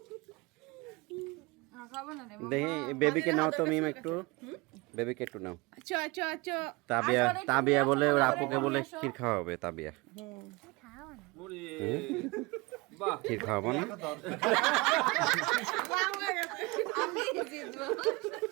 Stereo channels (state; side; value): quieter; left; 24.6 dB